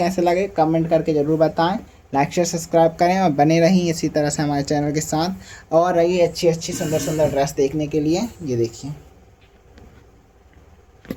लगे कमेंट करके ज़रूर बताएं। लाइक शेयर सब्सक्राइब करें और बने रहिए इसी तरह से हमारे चैनल के साथ, और रहिए अच्छी सुंदर ड्रेस देखने के लिए। ये देखिए,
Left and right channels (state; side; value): identical; both; correlation 1.00